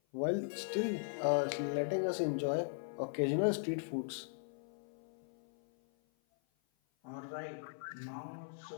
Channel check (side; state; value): right; silent; 52 dB below the other